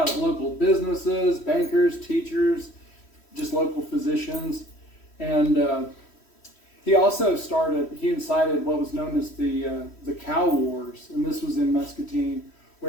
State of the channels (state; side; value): late; right; 3.1 ms